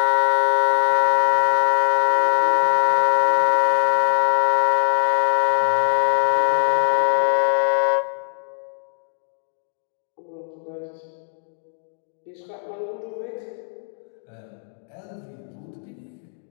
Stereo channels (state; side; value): silent; right; digital silence